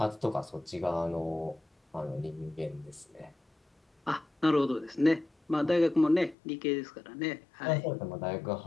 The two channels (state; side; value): drops out; right; at 6.4 s